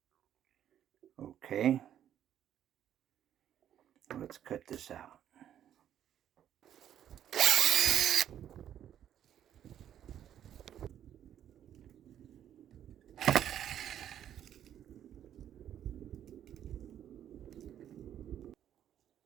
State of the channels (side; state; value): left; quieter; 10.4 dB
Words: Okay. Let's cut this out.